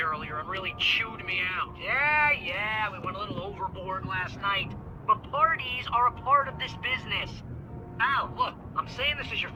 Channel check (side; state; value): both; identical; correlation 1.00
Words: and really chewed me out. Yeah, we went a little overboard last night. But parties are a part of this business. Al, look, I'm saying this as your